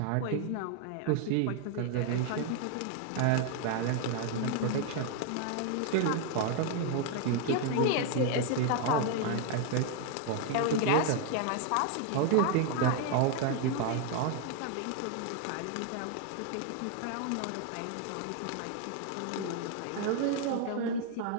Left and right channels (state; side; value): different; both; correlation 0.00